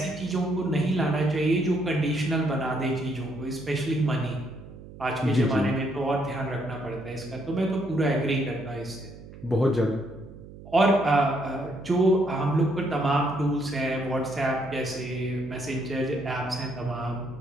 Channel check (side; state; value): right; noise; hum, 16 dB below the sound